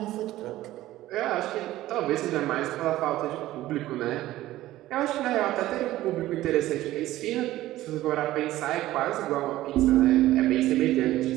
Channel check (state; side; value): quieter; left; 15.4 dB